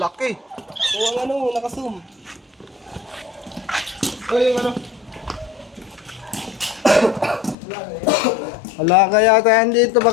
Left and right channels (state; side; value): drops out; right; at 7.6 s